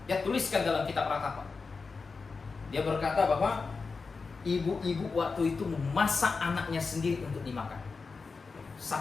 Dia tuliskan dalam kitab Ratapan. Dia berkata bahwa ibu-ibu waktu itu memasak anaknya sendiri untuk dimakan.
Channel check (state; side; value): quieter; right; 4.5 dB